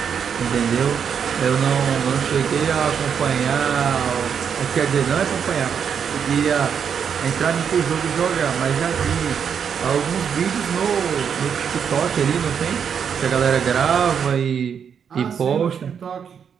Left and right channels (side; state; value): left; quieter; 7.4 dB